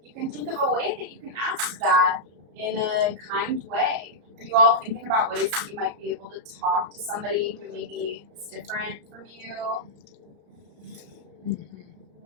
you can think of a way that you can ask that in a kind way. Are you all thinking about ways that you might be able to talk to somebody who maybe is different from you?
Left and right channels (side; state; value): left; late; 34 ms